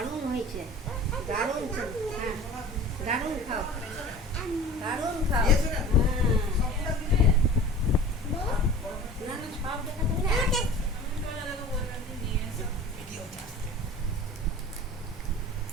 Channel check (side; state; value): both; normal; correlation 0.40